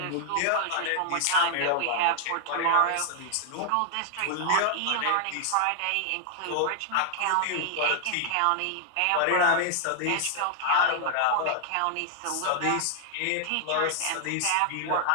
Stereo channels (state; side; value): different; both; correlation 0.00